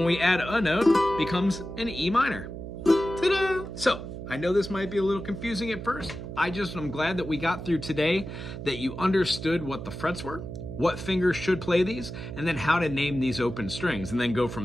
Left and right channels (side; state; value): right; noise; hum, 9 dB below the sound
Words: we add a note, becomes an E minor. Ta-da! So, I know this might be a little confusing at first. I'm glad that we got through today, that you understood what the frets were, what fingers should play these, and then how to name these open strings, and then go